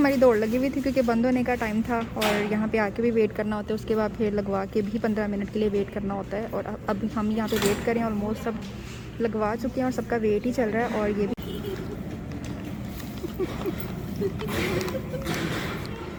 दौड़ लगी हुई थी क्योंकि बंद होने का टाइम था और यहाँ पे आके भी वेट करना होता है, उसके बाद फिर लगवा के भी 15 मिनट के लिए वेट करना होता है। और अब हम यहाँ पे वेट करें, ऑलमोस्ट सब लगवा चुके हैं और सबका वेट ही चल रहा है। और ये भी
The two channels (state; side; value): identical; both; correlation 1.00